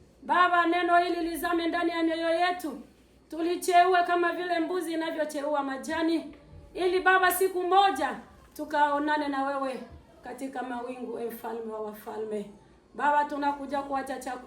Baba, neno hili lizame ndani ya mioyo yetu. Tulicheue kama vile mbuzi inavyocheua majani, ili Baba siku moja tukaonane na wewe katika mawingu, mfalme wa wafalme. Baba, tunakuja kuacha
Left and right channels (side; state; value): both; identical; correlation 1.00